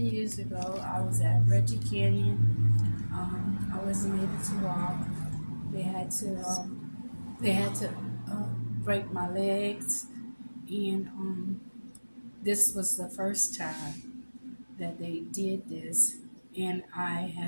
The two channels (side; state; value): both; inverted; correlation -1.00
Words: ago. I was at Reggie Canyon. I wasn't able to walk. They had to they had to break my legs, and this was the first time that they did this. And I